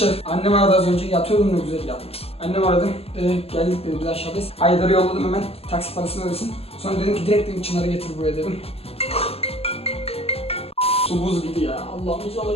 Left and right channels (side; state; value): right; late; 0.29 ms